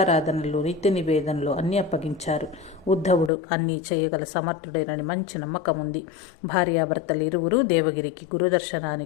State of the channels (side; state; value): right; drops out; at 3.3 s